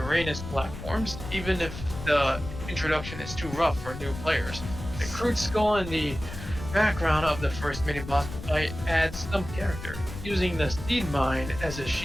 platforms, even if the introduction is too rough for new players. The crude skull in the background of the first mini-boss fight adds some character, using the seed mine as a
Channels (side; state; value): left; noise; rumble, 10 dB below the sound